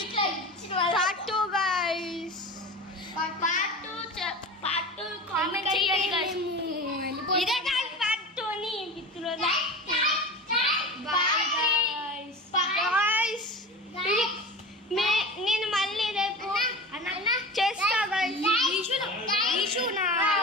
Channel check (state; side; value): normal; both; correlation 0.32